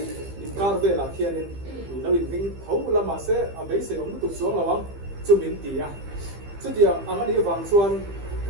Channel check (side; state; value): left; late; 15 ms